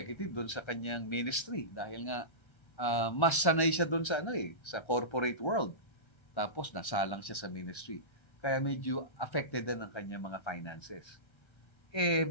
doon sa kanyang ministry dahil nga mas sanay siya doon sa sa corporate world. Tapos nasalang siya sa ministry. Kaya medyo affected din ang kanyang mga finances.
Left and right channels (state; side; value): late; right; 1.3 ms